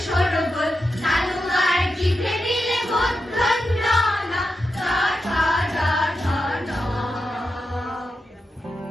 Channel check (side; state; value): both; normal; correlation 0.88